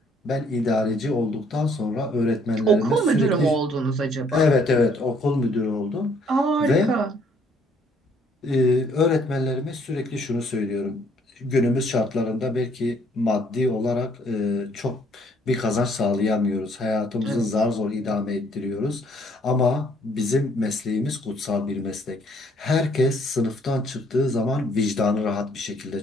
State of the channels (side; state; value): both; normal; correlation 0.64